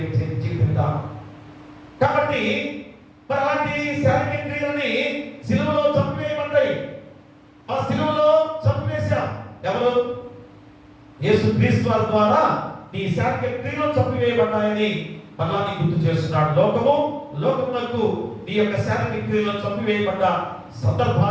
జీవిత విధానం. కాబట్టి మరి అలాంటి శారీరక క్రియలని సిలువలో చంపివేయబడ్డాయి. ఆ సిలువలో చంపివేశాం. ఎవరు? యేసుక్రీస్తు వారి ద్వారా నీ శారీరక క్రియలు చంపివేయబడ్డాయని మళ్ళా నీ గుర్తు చేస్తున్నాడు. లోకమునకు నీ యొక్క శారీరక క్రియలను చంపివేయబడ్డ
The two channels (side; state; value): both; identical; correlation 1.00